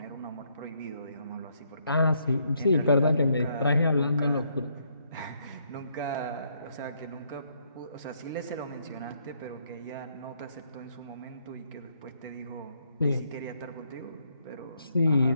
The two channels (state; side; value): inverted; both; correlation -0.72